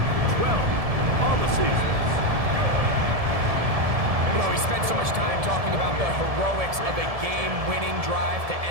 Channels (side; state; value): left; late; 1.7 ms